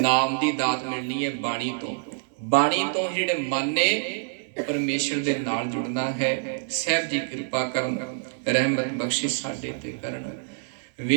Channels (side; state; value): left; silent; 58 dB below the other